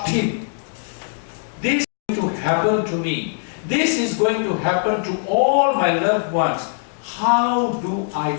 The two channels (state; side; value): silent; right; digital silence